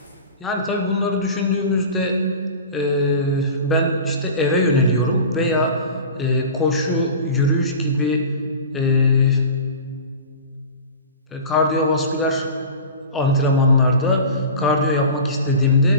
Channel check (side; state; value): both; inverted; correlation -0.35